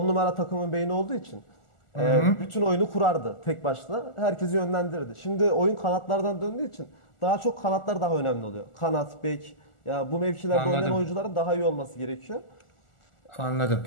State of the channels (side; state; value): right; late; 1.4 ms